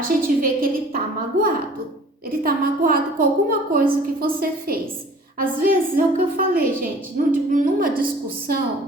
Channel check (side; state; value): both; normal; correlation 0.49